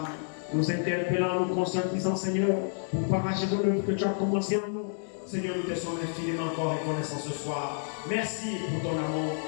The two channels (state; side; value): silent; right; digital silence